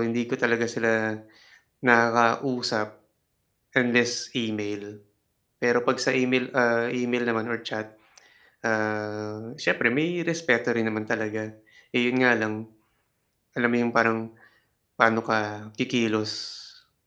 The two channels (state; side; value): identical; both; correlation 1.00